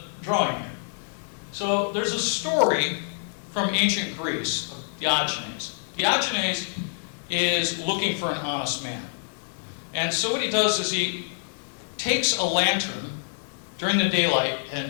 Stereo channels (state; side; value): silent; right; digital silence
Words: drawing here. So there's a story from ancient Greece of Diogenes. Diogenes is looking for an honest man. And so what he does is he takes a lantern during the daylight and